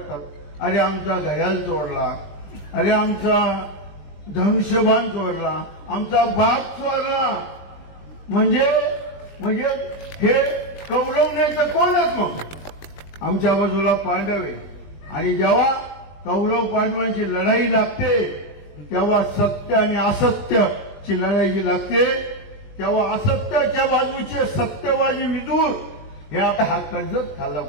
अरे आमचा घड्याळ चोरला, अरे आमचा धनुष्यबाण चोरला, आमचा बाग चोरला. म्हणजे हे कौरव नाही तर कोणच मग आमच्या बाजूला पांडव आहे. आणि जेव्हा कौरव पांडवांची लढाई लागते तेव्हा सत्य आणि असत्याची लढाई जी लागते तेव्हा असत्याच्या बाजूचे सत्यबाजी विदूर हे हा कर्जत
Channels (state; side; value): late; right; 20 ms